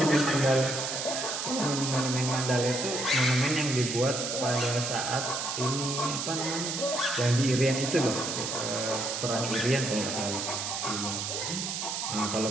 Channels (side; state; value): right; noise; hiss, 3 dB below the sound